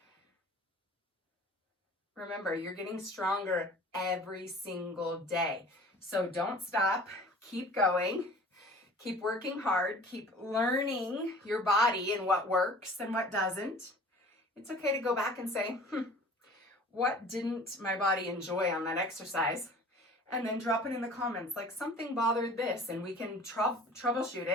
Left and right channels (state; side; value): normal; both; correlation 0.45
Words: Remember, you're getting stronger every single day. So don't stop. Keep going. Keep working hard. Keep learning your body and what works and what doesn't. It's okay to go back and say, what didn't my body enjoy on that exercise? And then drop it in the comments, like something bothered this, and we can troubleshoot